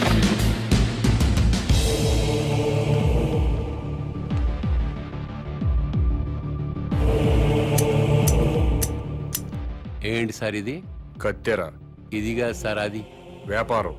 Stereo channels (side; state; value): both; identical; correlation 1.00